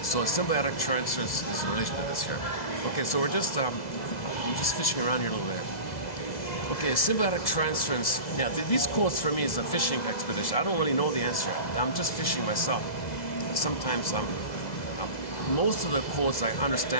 so a symbiotic transfer is in relation to this here. Okay, so we're just I'm just fishing around here a little bit. Okay, symbiotic transference. Now, these quotes for me is a fishing expedition. I don't really know the answer. I'm just fishing myself. Sometimes most of the quotes I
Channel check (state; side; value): late; right; 2.0 ms